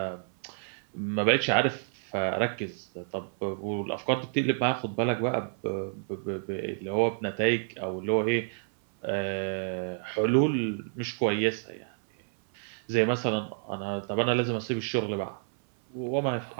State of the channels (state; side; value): silent; left; 57 dB below the other